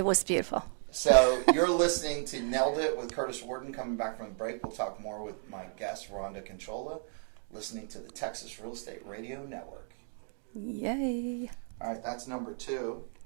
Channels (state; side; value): silent; left; 55 dB below the other